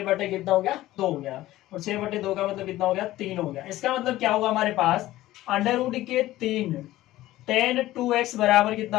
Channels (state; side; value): quieter; right; 15.8 dB